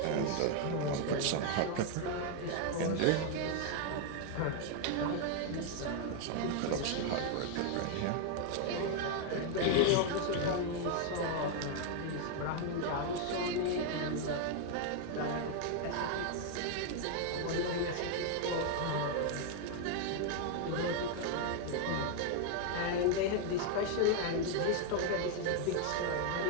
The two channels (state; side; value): different; both; correlation 0.00